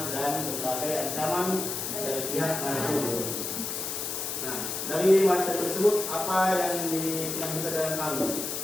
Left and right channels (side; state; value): left; noise; hiss, 4 dB below the sound